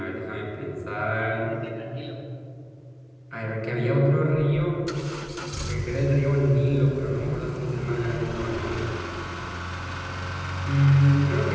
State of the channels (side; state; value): both; identical; correlation 1.00